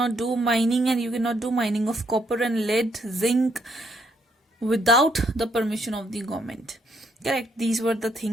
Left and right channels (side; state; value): both; normal; correlation 0.73